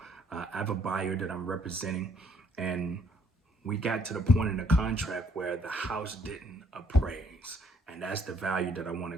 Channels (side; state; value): both; normal; correlation 0.65